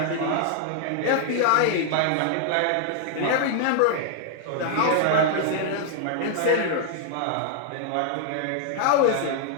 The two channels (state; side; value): different; both; correlation 0.00